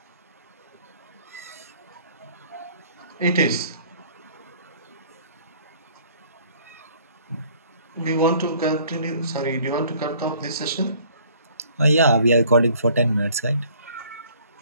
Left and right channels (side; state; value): both; inverted; correlation -0.56